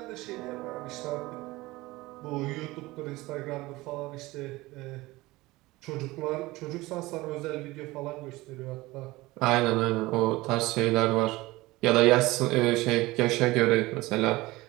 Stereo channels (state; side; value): quieter; left; 20.1 dB